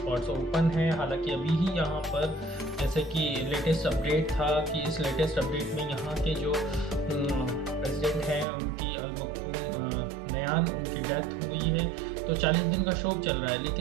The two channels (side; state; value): left; drops out; at 8.5 s